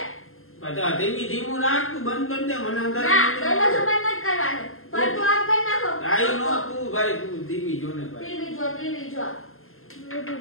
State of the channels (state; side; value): late; right; 0.61 ms